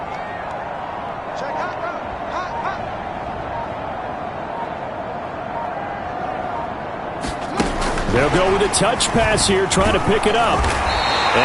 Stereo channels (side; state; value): both; identical; correlation 1.00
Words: They'll go with a touch pass here, trying to pick it up.